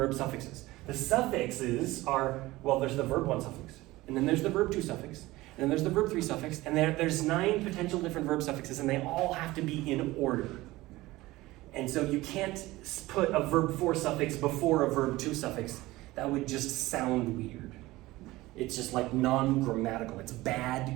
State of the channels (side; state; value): left; quieter; 18.8 dB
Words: suffixes. The suffixes are, there's the verb 1 suffix, and then there's the verb 2 suffix, and then there's the verb 3 suffix, and there's 9 potential different verb suffixes, and they all have to be in order. And so you can't put a verb 4 suffix before a verb 2 suffix. That would just sound weird. It's just like non-grammatical. It's